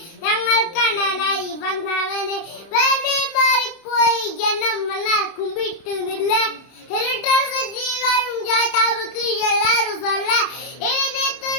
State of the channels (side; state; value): right; late; 30 ms